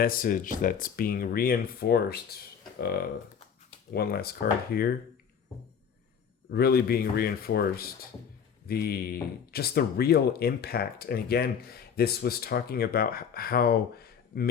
that's being reinforced. One last card here. Really being reinforced. The real impact. And again, this was talking about how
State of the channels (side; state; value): right; quieter; 7.3 dB